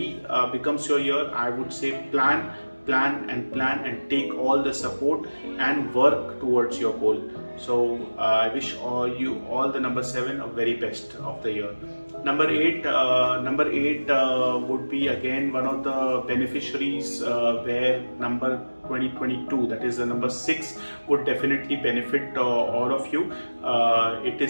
becomes your year, I would say plan and take all the support and work towards your goal. So I wish all the number 7 a very best of the year. Number 8 would be again one of the beneficiaries where number 2022, that is the number 6, would definitely benefit all of you. It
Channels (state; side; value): inverted; both; correlation -1.00